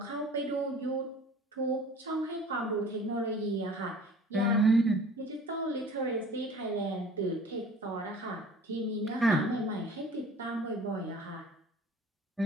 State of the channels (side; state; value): both; normal; correlation 0.46